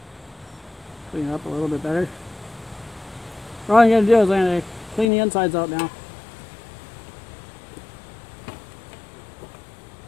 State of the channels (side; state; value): right; drops out; at 5.1 s